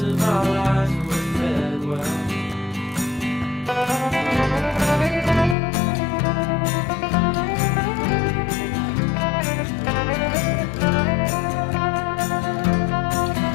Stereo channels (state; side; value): drops out; right; at 5.6 s